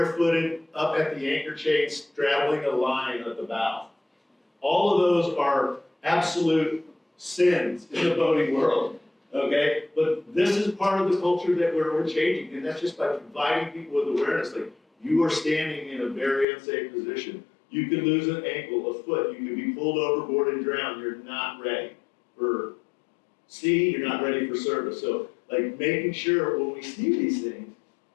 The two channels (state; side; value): drops out; right; at 16.4 s